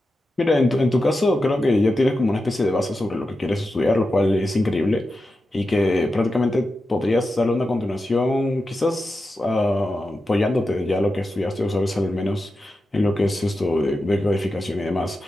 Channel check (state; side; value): normal; both; correlation 0.90